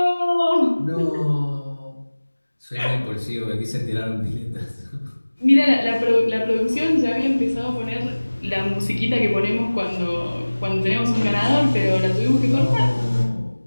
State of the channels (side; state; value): both; inverted; correlation -1.00